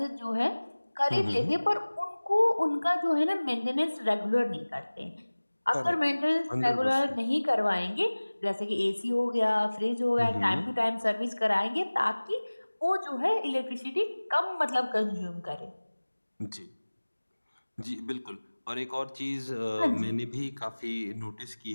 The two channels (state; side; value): inverted; both; correlation -1.00